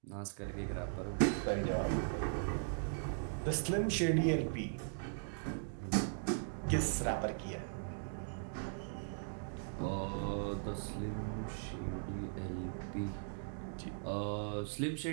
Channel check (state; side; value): silent; left; digital silence